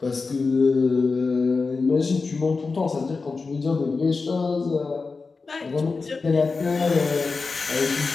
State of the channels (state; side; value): quieter; right; 4.3 dB